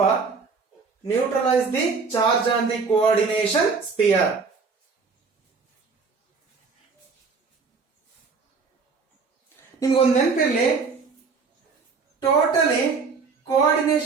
neutralise the charge on the coordination sphere. ನಿಮ್ಗೊಂದು ನೆನಪಿರ್ಲಿ, ಟೋಟಲಿ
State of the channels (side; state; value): left; quieter; 4.9 dB